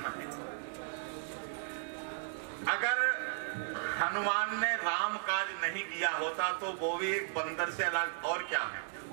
है। अगर हनुमान ने राम काज नहीं किया होता तो वो भी एक बंदर से अलग और क्या है,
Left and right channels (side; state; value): left; silent; digital silence